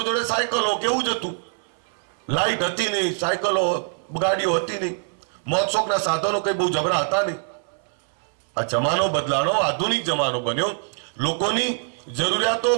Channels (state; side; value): silent; left; 63 dB below the other